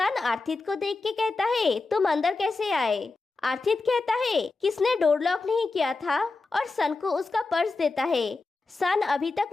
आर्थिक को देख के कहता है तुम अंदर कैसे आए? आर्थिक कहता है किसने डोर लॉक नहीं किया था, और सन को उसका पर्स देता है। सन अभी तक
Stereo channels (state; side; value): quieter; right; 3.7 dB